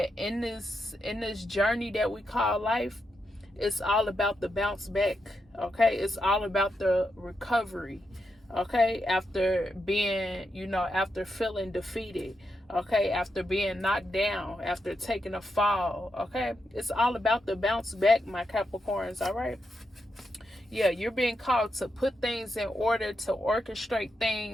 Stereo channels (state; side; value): normal; both; correlation 0.84